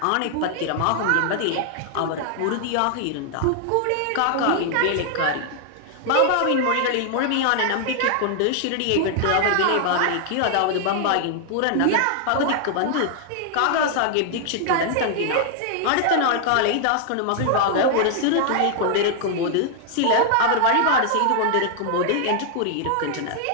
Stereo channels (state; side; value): different; both; correlation 0.00